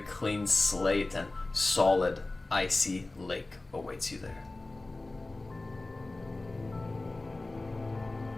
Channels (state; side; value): quieter; right; 3.0 dB